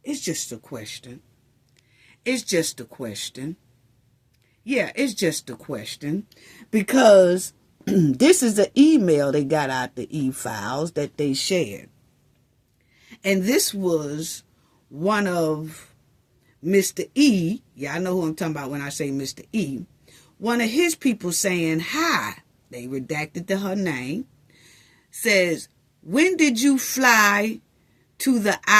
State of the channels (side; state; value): both; identical; correlation 1.00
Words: It's just a question. It's just a question. Yeah, it's just a question. Because this is an email they got out the e-files that they shared. And this was one of Mr. E. Yeah, I know who I'm talking about when I say Mr. E. One of his people saying hi. They redacted her name. Says, when did you fly to the